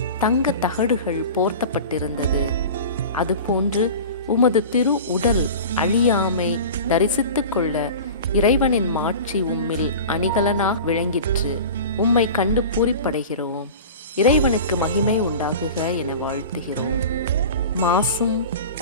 தங்க தகடுகள் போர்த்தப்பட்டிருந்தது. அதுபோன்று உமது திரு உடல் அழியாமை தரிசித்துக் கொள்ள இறைவனின் மாட்சி உம்மில் அணிகலனாக விளங்கிற்று. உம்மை கண்டு பூரிப்படைகிறோம். இறைவனுக்கு மகிமை உண்டாகுக என வாழ்த்துகிறோம். மாசும்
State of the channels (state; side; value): inverted; both; correlation -0.35